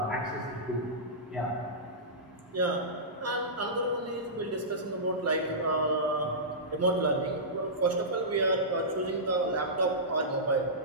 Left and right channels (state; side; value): normal; both; correlation -0.18